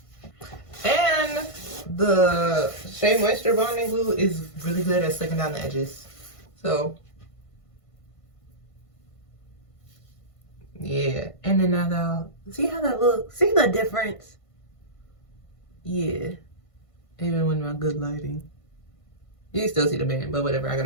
And the Shea Moisture Bonding Glue is really good at sticking down the edges. So, yeah. And then now that'll, see how that looks? See the difference? Yeah. Even with my good lighting. You can still see the band, but whatever. I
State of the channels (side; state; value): right; late; 1.5 ms